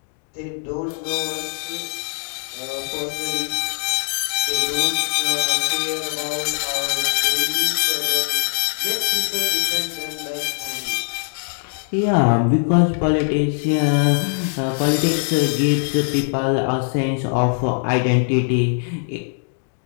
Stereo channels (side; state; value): right; silent; digital silence